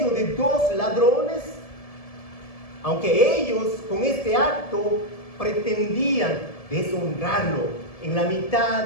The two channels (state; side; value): late; right; 1.7 ms